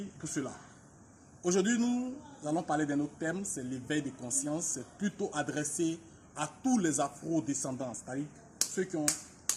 pour cela. Aujourd'hui, nous allons parler d'un autre thème, c'est l'éveil de conscience. C'est plutôt adressé à tous les afro-descendants, c'est-à-dire ceux qui ont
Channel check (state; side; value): identical; both; correlation 1.00